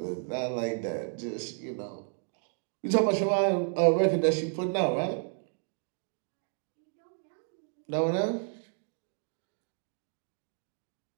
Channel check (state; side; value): silent; left; 56 dB below the other